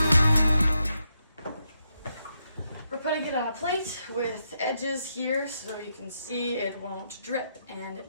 We're putting it on a plate with edges here so you can see it won't drip, and it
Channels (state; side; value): inverted; both; correlation -0.81